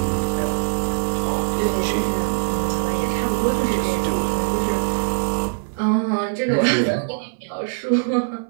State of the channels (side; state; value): left; silent; 61 dB below the other